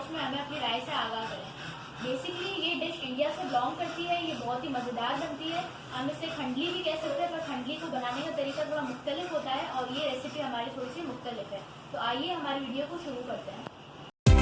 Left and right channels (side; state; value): both; identical; correlation 1.00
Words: में हमें अपनी राय से आगाह करें। बेसिकली ये डिश इंडिया से बिलोंग करती है, ये बहुत ही मज़ेदार बनती है। हम इसे खंडली भी कह सकते हैं, पर खंडली को बनाने का तरीका थोड़ा मुख्तलिफ होता है और ये रेसिपी हमारी थोड़ी सी मुख्तलिफ है। तो आइए हमारी वीडियो को शुरू करते हैं।